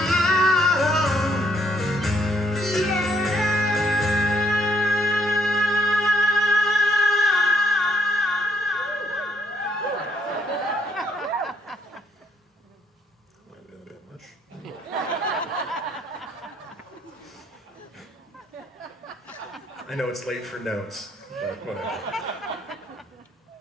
might be a bit much. I know it's late for notes, but whatever.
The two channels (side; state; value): both; normal; correlation 0.69